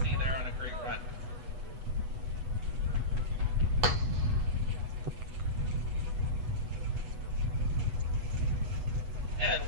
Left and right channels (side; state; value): left; late; 8.1 ms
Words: there on a great run. And